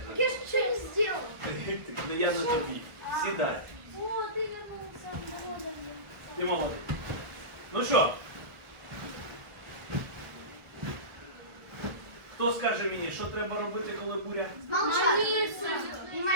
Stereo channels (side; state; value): left; late; 1.4 ms